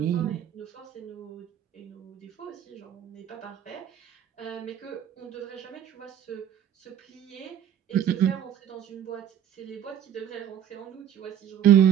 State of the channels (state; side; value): quieter; left; 9.9 dB